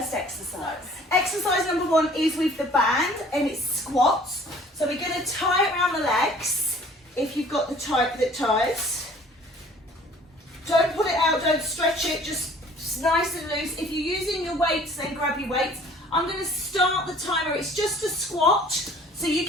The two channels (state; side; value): normal; both; correlation 0.53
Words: exercise. Exercise number 1 is with the band and it's squats. So we're going to tie it around the legs. If you've got the type that ties, don't pull it out, don't stretch it, just nice and loose. If you're using your weights, then grab your weights. I'm going to start the timer. It's just a squat, so you